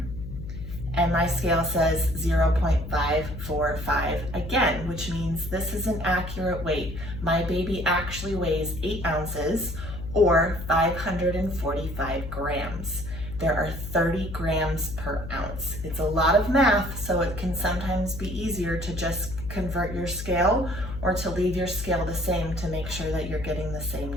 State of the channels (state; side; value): noise; left; hum, 9 dB below the sound